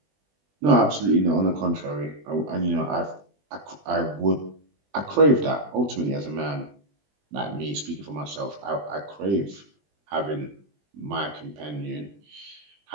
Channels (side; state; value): left; late; 20 ms